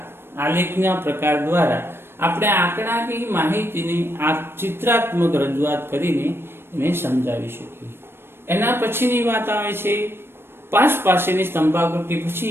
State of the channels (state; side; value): late; left; 0.11 ms